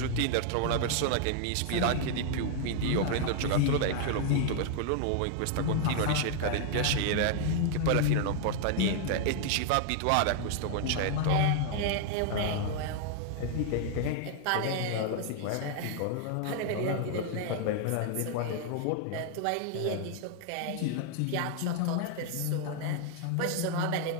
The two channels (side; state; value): both; different; correlation 0.00